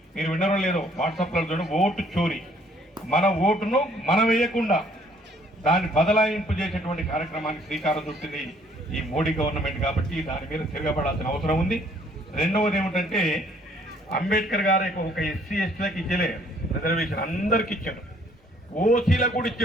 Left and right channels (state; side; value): normal; both; correlation 0.62